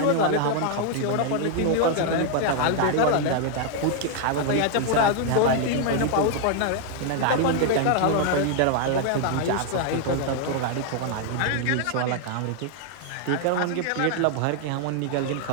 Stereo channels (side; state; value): both; different; correlation 0.00